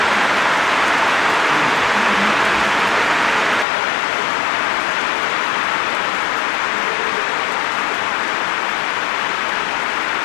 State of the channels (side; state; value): right; drops out; at 3.7 s